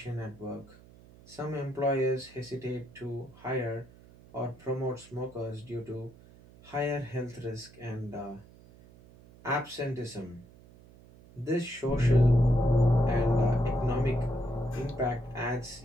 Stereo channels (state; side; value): noise; right; hum, 23 dB below the sound